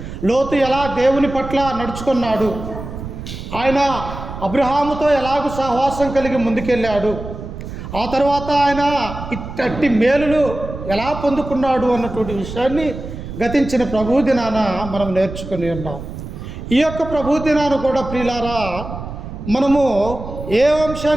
లోతు ఎలా దేవుని పట్ల నడుచుకున్నాడు, ఆయన అబ్రహాముతో ఎలాగూ సహవాసం కలిగి ముందుకెళ్ళాడు, ఆ తర్వాత ఆయన ఇట్టి మేలులు ఎలా పొందుకున్నాడు అన్నటువంటి విషయాన్ని గతించిన ప్రభు దినాన మనం నేర్చుకుని ఉన్నాం. ఈ యొక్క ప్రభు దినాన్ని కూడా ప్రియులారా మనము ఏ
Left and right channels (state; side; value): noise; right; rumble, 10 dB below the sound